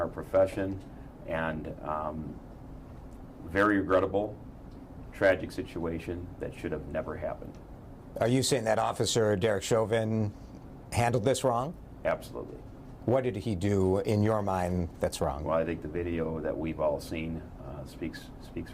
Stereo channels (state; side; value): identical; both; correlation 1.00